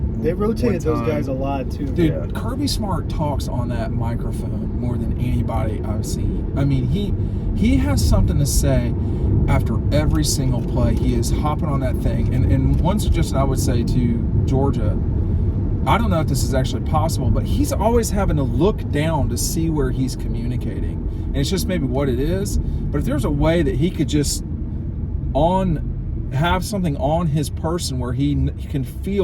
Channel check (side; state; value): both; identical; correlation 1.00